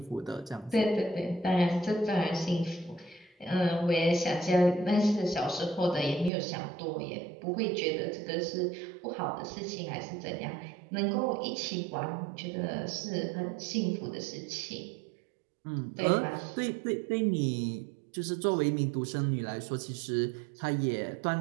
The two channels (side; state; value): left; drops out; at 6.3 s